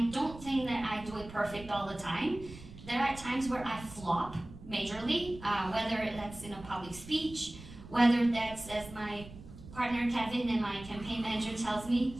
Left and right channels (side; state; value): right; noise; rumble, 16 dB below the sound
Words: don't think that I do it perfect all the time. There are times where I flop majorly, whether that's in a public speech, whether that's as my partner Kevin and my campaign manager tells me,